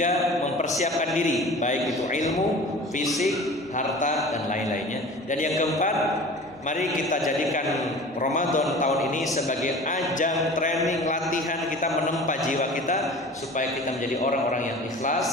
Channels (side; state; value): both; normal; correlation 0.40